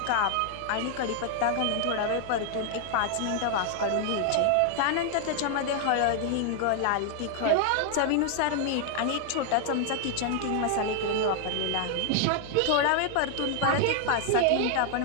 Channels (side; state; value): both; different; correlation 0.00